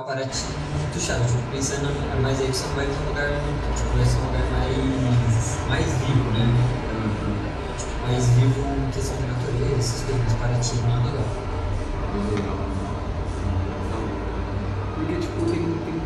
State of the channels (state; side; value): identical; both; correlation 1.00